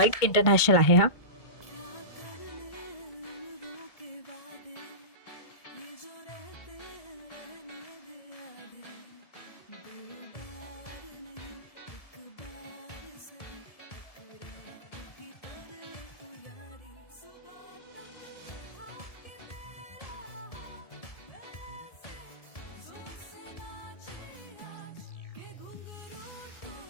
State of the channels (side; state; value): right; late; 1.7 ms